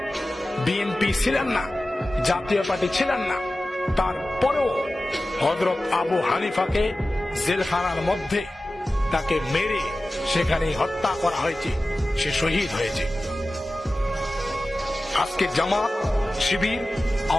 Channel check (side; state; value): both; normal; correlation 0.96